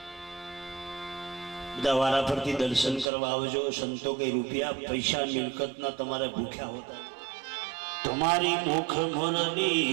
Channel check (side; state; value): left; drops out; at 3.1 s